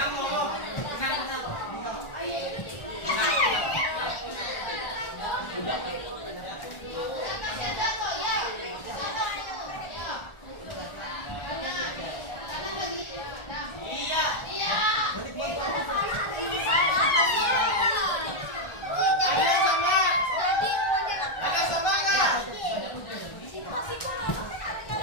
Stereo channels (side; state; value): right; late; 1.4 ms